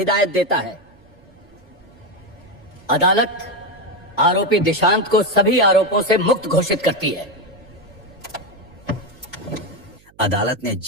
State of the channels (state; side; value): noise; right; hum, 30 dB below the sound